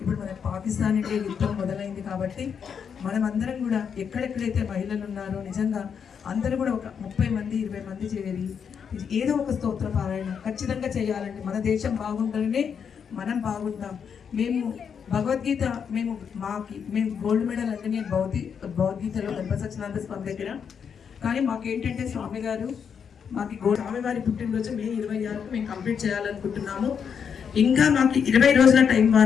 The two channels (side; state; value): right; quieter; 7.1 dB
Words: మన పాకిస్తాన్ ఇండియా యుద్ధం మొదలైంది కాబట్టి మనం అందరం కూడా ఎక్కడెక్కడైతే మహిళలు ఉన్నారో నిజంగా అందరూ కూడా ఒక 30 మంది 20 మంది చేరి ఏదో ఒక స్తోత్ర పారాయణ ఖచ్చితంగా చేయాలండి. మన దేశం బాగుండాలనే మనం బాగుంటాం. మేము భగవద్గీత మేము గోల్డ్ మెడల్ అంటే నేను భగవద్గీతలో గణపతి సత్యనారాయణ స్వామి దగ్గర, కానీ మాకేంటంటే స్వామి గారు మాకు స్వామివారి పుట్టినరోజు మే 26కు మేము కంప్లీట్ చేయాలనుకుంటున్నాము. ఇంకా మాకు 20 రోజుల టైం